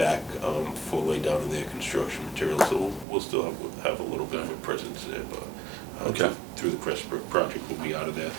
for lay-down of their construction materials. So we'll still have a little bit of a presence there, but Okay. through the Crestbrook project, we'll be out of there.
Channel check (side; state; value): left; drops out; at 3.1 s